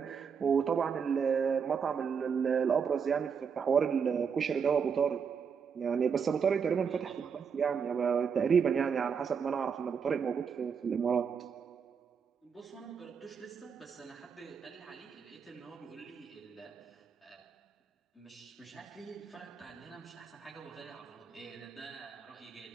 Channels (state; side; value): quieter; left; 6.5 dB